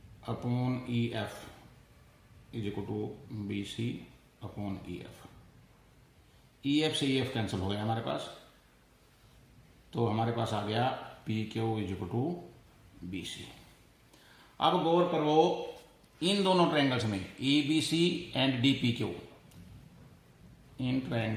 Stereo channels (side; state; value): both; identical; correlation 1.00